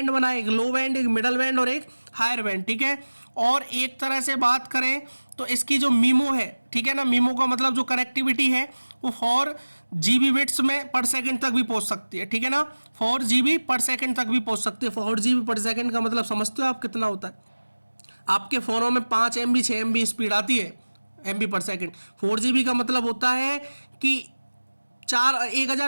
बनाए, एक लो बैंड, एक मिडल बैंड और एक हायर बैंड, ठीक है। और एक तरह से बात करें तो इसकी जो मीमो है, ठीक है ना, मीमो का मतलब जो कनेक्टिविटी है वो 4 GB बिट्स में पर सेकंड तक भी पहुंच सकती है, ठीक है ना। 4 GB पर सेकंड तक भी पहुंच सकती है। 4 GB पर सेकंड का मतलब समझते हो आप कितना होता है। आपके फ़ोनों में 5 MB 6 MB स्पीड आती है MB पर सेकंड। 4 GB का मतलब होता है कि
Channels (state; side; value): inverted; both; correlation -1.00